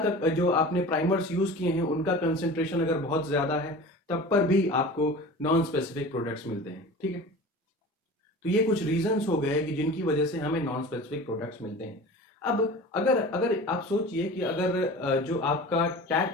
का जो आपने प्राइमर्स यूज किए हैं उनका कंसंट्रेशन अगर बहुत ज्यादा है तब पर भी आपको नॉन स्पेसिफिक प्रोडक्ट्स मिलते हैं। ठीक है, तो ये कुछ रीजंस हो गए कि जिनकी वजह से हमें नॉन स्पेसिफिक प्रोडक्ट्स मिलते हैं। अब अगर आप सोचिए कि अगर जो आपका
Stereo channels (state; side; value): normal; both; correlation 0.37